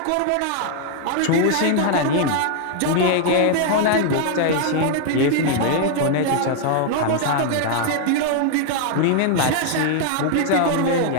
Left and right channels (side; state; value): both; different; correlation 0.00